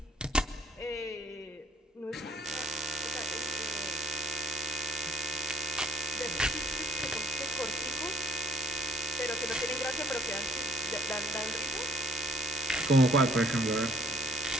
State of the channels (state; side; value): normal; both; correlation 0.61